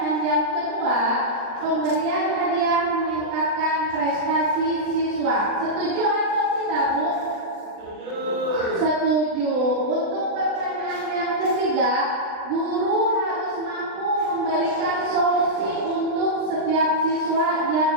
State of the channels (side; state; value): left; late; 39 ms